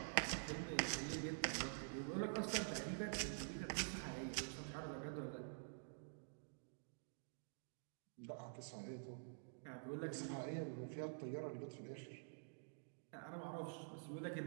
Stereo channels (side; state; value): left; silent; digital silence